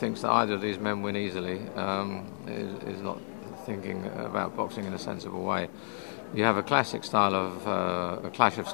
that either of these men win easily is not thinking about boxing in a sensible way. You have a classic style of a clash of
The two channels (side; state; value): right; silent; digital silence